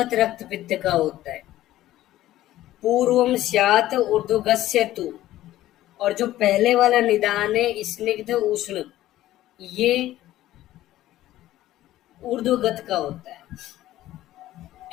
रक्त पित्त का होता है। पूर्वम स्यात ऊर्ध्वगस्य तु, और जो पहले वाला निदान है स्निग्ध उष्ण, ये ऊर्ध्वगत का होता है।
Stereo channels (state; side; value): quieter; right; 14.6 dB